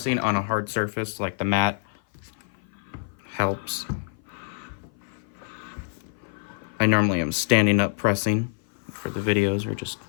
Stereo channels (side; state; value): right; silent; 56 dB below the other